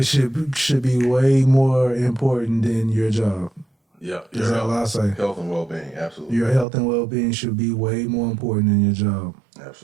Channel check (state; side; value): drops out; left; at 6.7 s